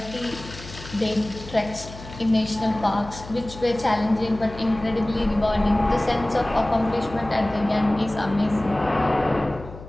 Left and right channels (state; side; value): noise; left; hum, 15 dB below the sound